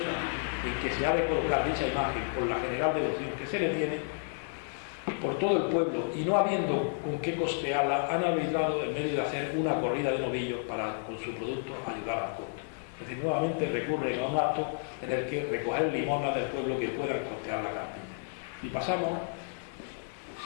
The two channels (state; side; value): silent; right; digital silence